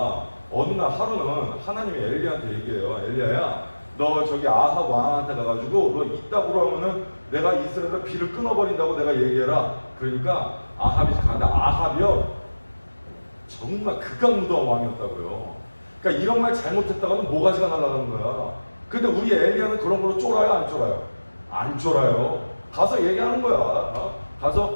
어느 날 하루는 하나님이 엘리야한테 얘기해요. 엘리야야, 너 저기 아합 왕한테 가가지고 너 이따구로 하면은 내가 이스라엘에 비를 끊어버린다고 내가 얘기해라. 그러니까 아합이 가는데 아합이요 정말 극악무도한 왕이었다고요. 그러니까 이런 말 잘못했다가는 모가지가 날아가는 거야. 근데 우리 엘리야는 그런 걸로 쫄아요, 안 쫄아요? 안 쫄아요. 가서 얘기하는 거야.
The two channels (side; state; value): both; inverted; correlation -1.00